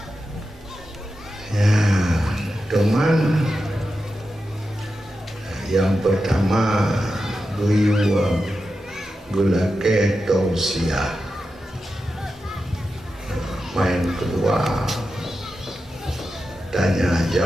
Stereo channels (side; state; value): both; normal; correlation 0.90